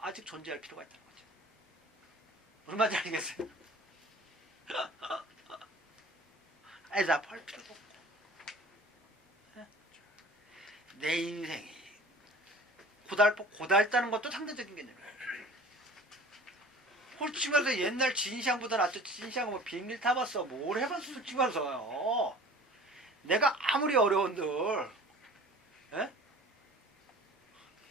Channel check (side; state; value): both; normal; correlation 0.45